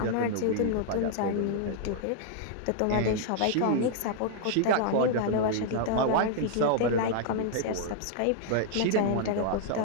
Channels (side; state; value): both; different; correlation -0.01